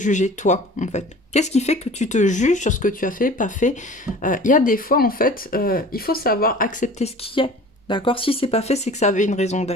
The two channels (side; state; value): both; normal; correlation 0.43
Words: toi, en fait? Qu'est-ce qui fait que tu te juges sur ce que tu as fait, pas fait? Il y a des fois, en fait, il faut savoir accepter ce qui est, d'accord? Si c'est pas fait, c'est que ça avait une raison